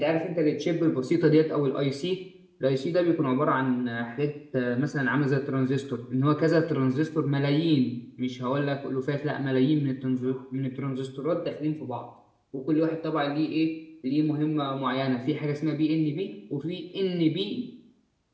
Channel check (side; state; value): both; identical; correlation 1.00